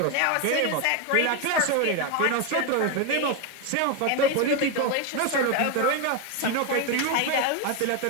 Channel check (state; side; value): different; both; correlation 0.01